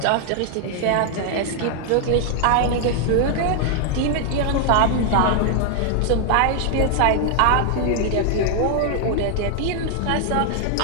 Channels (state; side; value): different; both; correlation 0.00